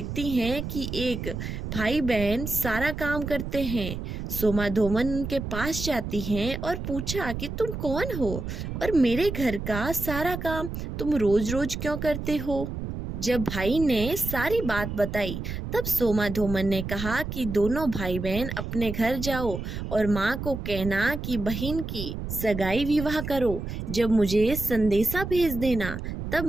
हैं कि एक भाई बहन सारा काम करते हैं। सोमा धूमन उनके पास जाती हैं और पूछा कि तुम कौन हो और मेरे घर का सारा काम तुम रोज रोज क्यों करते हो। जब भाई ने सारी बात बताई तब सोमा धूमन ने कहा कि दोनों भाई बहन अपने घर जाओ और माँ को कहना कि बहन की सगाई विवाह करो। जब मुझे संदेशा भेज देना तब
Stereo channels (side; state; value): right; noise; rumble, 6 dB below the sound